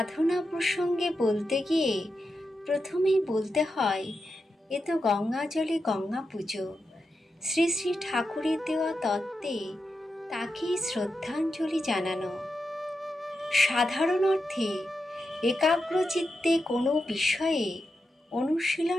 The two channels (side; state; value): both; normal; correlation 0.88